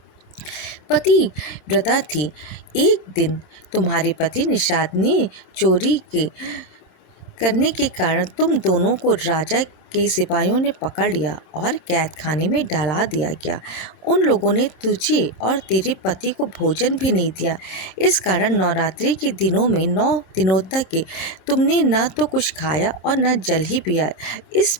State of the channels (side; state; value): right; late; 26 ms